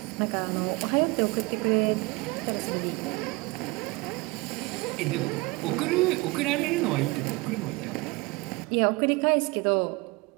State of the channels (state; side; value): quieter; left; 24.3 dB